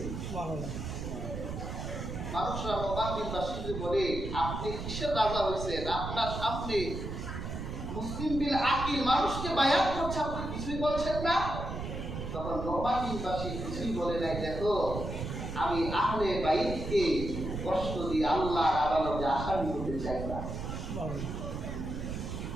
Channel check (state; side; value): noise; right; rumble, 6 dB below the sound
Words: মানুষরা নোমান বিন বাশীরকে বলে, আপনি কিসের রাজা হয়েছেন? আপনার সামনে মুসলিম বিন আকিল মানুষকে বায়াত করছে, আপনি কিছুই বলছেন না। তখন নোমান বিন বাশীর কিছুই বলে নাই, দেখো আমি আহলে বাইতকে কষ্ট দিয়ে আল্লাহর আদালতে আসামি হতে চাই না।